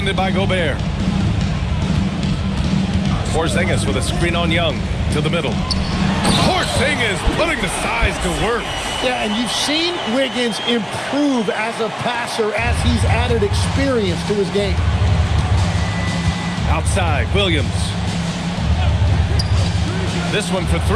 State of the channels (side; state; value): both; identical; correlation 1.00